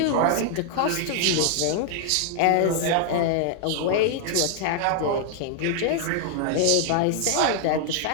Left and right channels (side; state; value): both; different; correlation 0.00